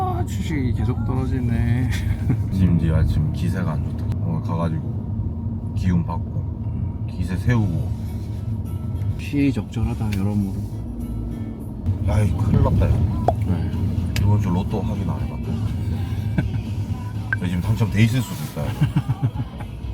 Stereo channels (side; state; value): both; identical; correlation 1.00